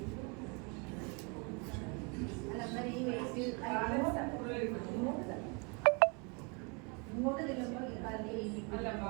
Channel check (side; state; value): left; quieter; 33.2 dB